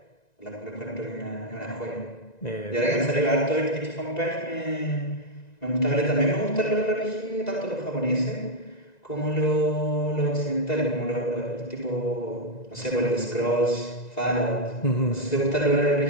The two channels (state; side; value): late; right; 1.9 ms